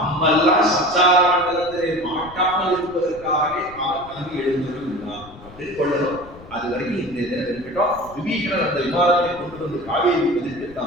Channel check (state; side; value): noise; left; rumble, 20 dB below the sound